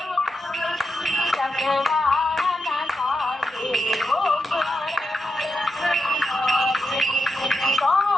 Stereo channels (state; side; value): normal; both; correlation 0.87